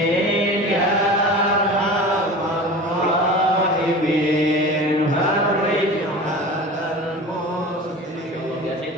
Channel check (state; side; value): normal; both; correlation 0.35